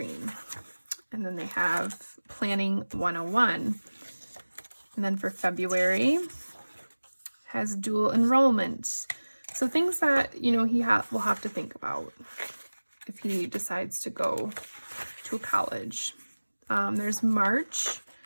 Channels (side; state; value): both; inverted; correlation -1.00